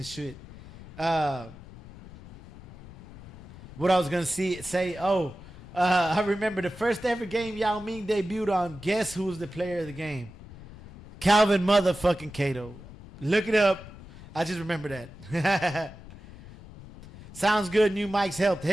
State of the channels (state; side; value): noise; left; rumble, 16 dB below the sound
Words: shit. What I was going to say, I remember the first ever game Yao Ming debuted on. Guess who was the player of the game? Calvin motherfucking Cato. Look it up. I just remember that. Sounds good. New mics helped.